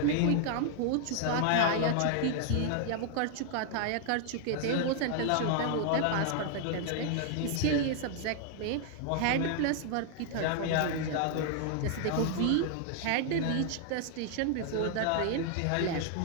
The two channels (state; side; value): different; both; correlation 0.00